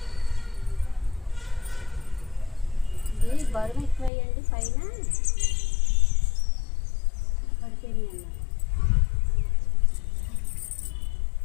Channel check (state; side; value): drops out; right; at 4.1 s